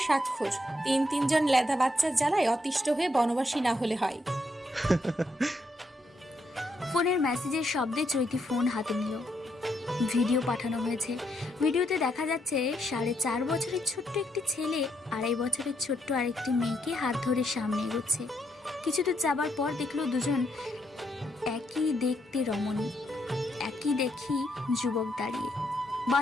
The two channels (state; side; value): normal; both; correlation 0.77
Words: স্বাক্ষর তিনজন লেদা বাচ্চার জ্বালায় অতিষ্ঠ হয়ে বনবাসী না হলে হয়। ফোনের মেসেজের শব্দে চৈতি ফোন হাতে নিল। ভিডিও পাঠানো হয়েছে। ভিডিওতে দেখা যাচ্ছে 4.5 বছরের ছোট্ট একটি ছেলে 2.5 বছরের ছোট্ট আরেকটি মেয়েকে হাত ধরে সামনে এগোচ্ছে। কিছু দূর যাবার পর দেখলো দুজন একই দেখতে রমণী, একই দেখি যুবক দাঁড়িয়ে।